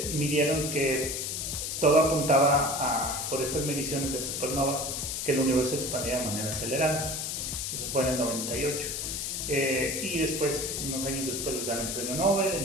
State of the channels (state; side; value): noise; left; hiss, 3 dB below the sound